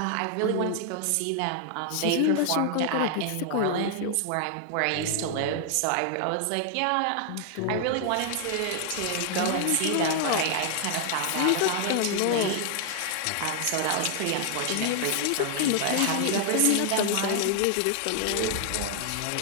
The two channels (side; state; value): both; different; correlation 0.00